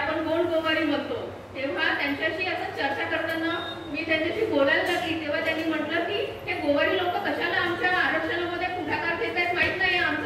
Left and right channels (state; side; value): identical; both; correlation 1.00